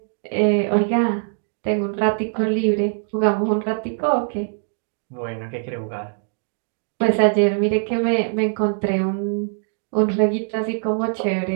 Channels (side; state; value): left; silent; digital silence